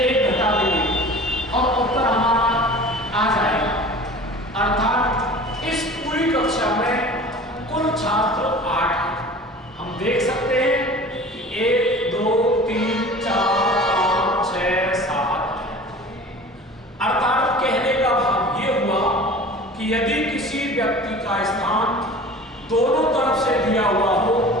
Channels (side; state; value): both; normal; correlation 0.41